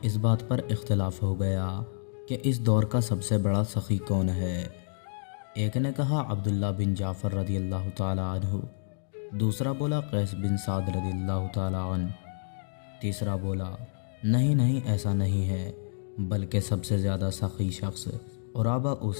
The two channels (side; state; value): right; silent; digital silence